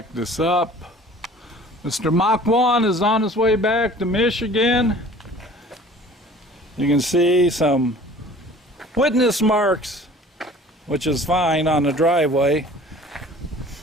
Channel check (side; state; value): both; normal; correlation 0.48